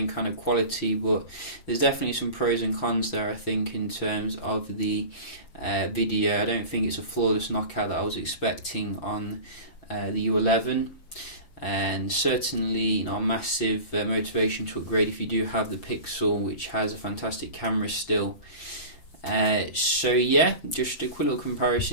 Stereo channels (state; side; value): late; right; 5.8 ms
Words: kind of quality, but there's definitely some pros and cons there, I think, in terms of the video. I don't think it's a flawless knockout that I was expecting on the U11. And certainly, you know, a massive motivation to upgrade if you do have the Pixel, which has a fantastic camera still. So yeah, just a quick little